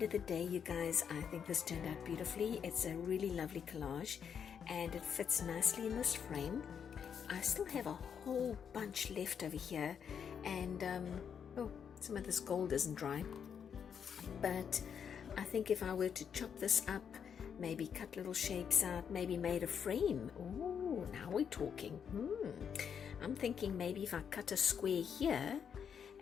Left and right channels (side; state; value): right; quieter; 7.5 dB